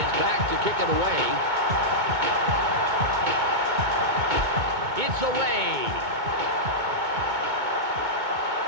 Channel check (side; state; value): left; late; 2.2 ms